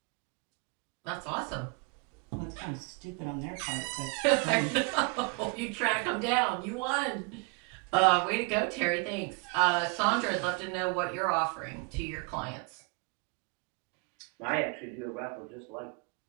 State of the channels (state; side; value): quieter; left; 32.3 dB